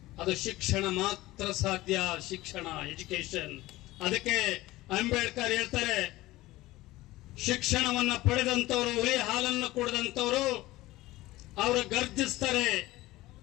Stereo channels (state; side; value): quieter; right; 18.1 dB